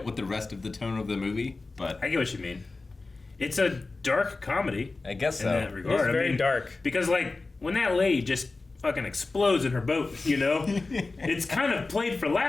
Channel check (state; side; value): quieter; right; 3.6 dB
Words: with the rest of the tone of the movie. But I get what you mean. It's a dark comedy. I guess in so. that regard. It's very dark. Because like when that lady just fucking explodes in her boat, you know, it's kind of played for